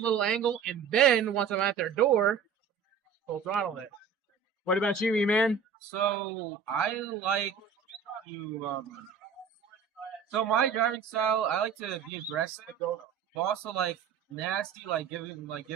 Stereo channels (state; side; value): quieter; left; 6.5 dB